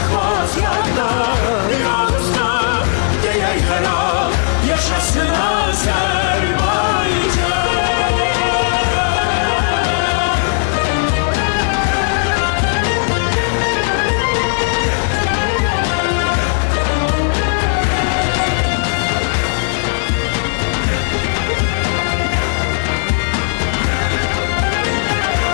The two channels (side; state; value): right; silent; digital silence